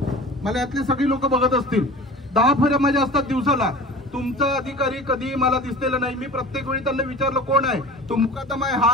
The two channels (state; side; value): normal; both; correlation 0.39